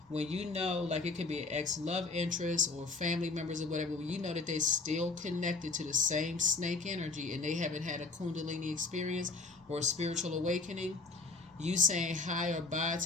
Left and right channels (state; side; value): quieter; right; 3.8 dB